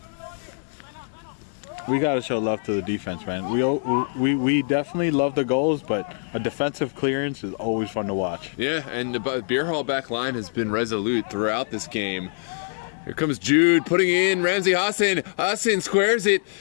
We got to show love to the defense, man. We definitely love the goals, but a defensive clearance is always fun to watch. Yeah, and the Bierhalle back line has been resolute throughout this game. Here comes Jude putting in Ramsey Hassan. Hassan squares it.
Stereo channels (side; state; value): right; silent; digital silence